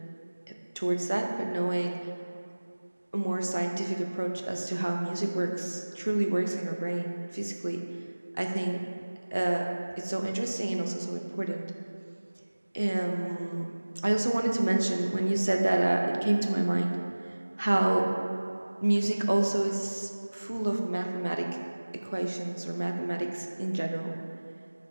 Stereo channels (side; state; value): both; inverted; correlation -1.00